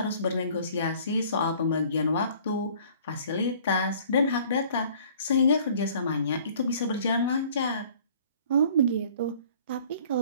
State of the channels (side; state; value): both; inverted; correlation -0.53